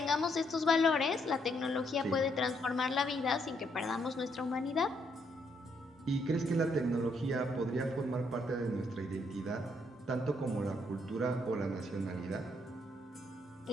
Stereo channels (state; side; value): normal; both; correlation 0.73